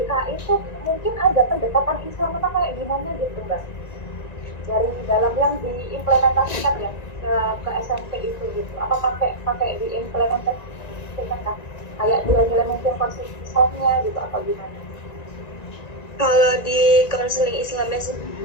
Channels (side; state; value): right; late; 1.9 ms